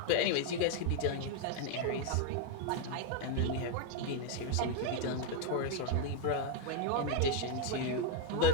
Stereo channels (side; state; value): both; different; correlation 0.00